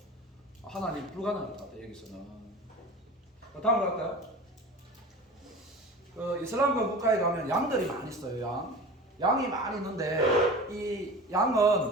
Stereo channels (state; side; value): normal; both; correlation 0.36